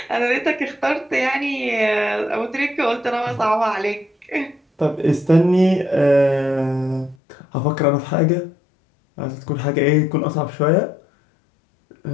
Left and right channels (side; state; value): right; drops out; at 7.2 s